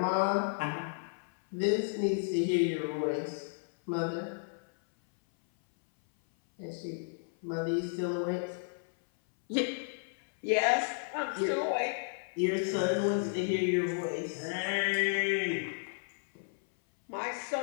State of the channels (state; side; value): silent; right; 56 dB below the other